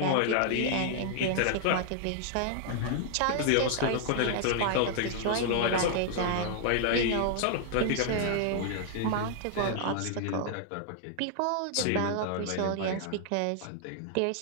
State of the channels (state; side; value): different; both; correlation 0.00